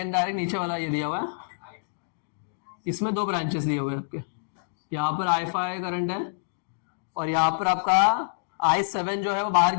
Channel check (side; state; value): right; silent; digital silence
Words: डायरेक्ट नीचे वाला ये दिया हुआ है, इसमें 2 ब्रांचेस दिए हुए हैं आपके, यहाँ पर I5 करंट है और यहाँ पर आपका I7 जो है वो बाहर